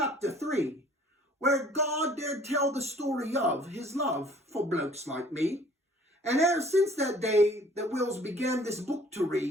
3, where God dared tell the story of his love for blokes like me. And e'er since that day that Will's began this book to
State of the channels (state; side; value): normal; both; correlation 0.54